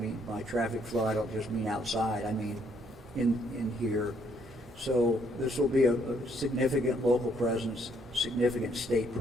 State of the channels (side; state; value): both; normal; correlation 0.69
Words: by traffic flow, I don't just mean outside, I mean in here, So this will be a significant local presence, significant state